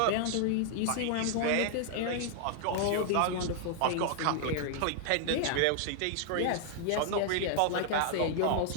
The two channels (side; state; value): both; different; correlation 0.00